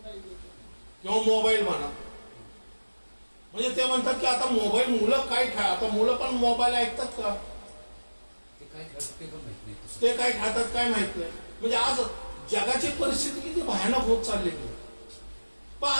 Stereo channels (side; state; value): both; inverted; correlation -1.00